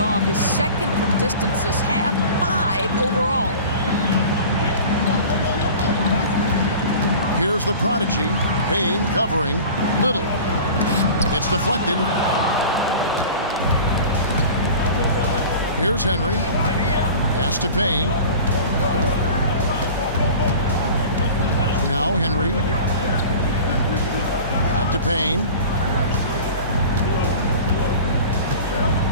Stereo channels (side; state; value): both; inverted; correlation -0.39